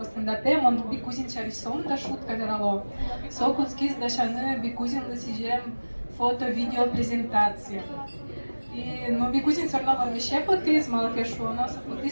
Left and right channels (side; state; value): both; inverted; correlation -1.00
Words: стендапе, мон Бикузин шариш сон да шутка дерало. Со куцкис да шаны Бикузин лысижем фото, видео, презентация. И, ну, Бикузин все равно вообще потис, мало кешу, но